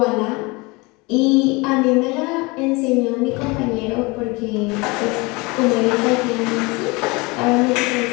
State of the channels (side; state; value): right; quieter; 25.8 dB